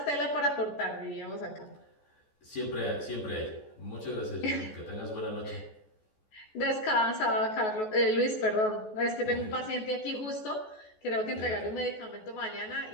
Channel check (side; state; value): right; late; 14 ms